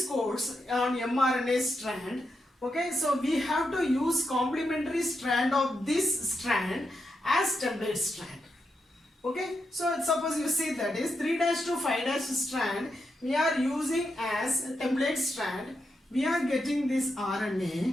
codes on mRNA strand, okay, so we have to use complementary strand of this strand as template strand. Okay, so suppose you see, that is 3' to 5' strand we are using as template strand. We are getting this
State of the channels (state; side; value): normal; both; correlation 0.84